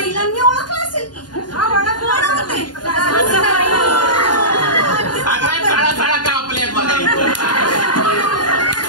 ओळखलं असेल की. सगळ्या साळा कापल्या बघायचं.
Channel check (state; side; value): late; right; 0.70 ms